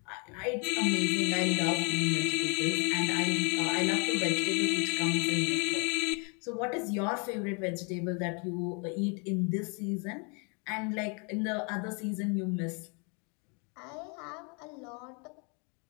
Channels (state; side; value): quieter; right; 34.9 dB